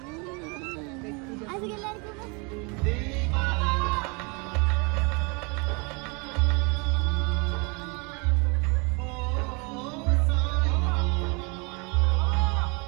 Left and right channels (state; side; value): quieter; left; 31.1 dB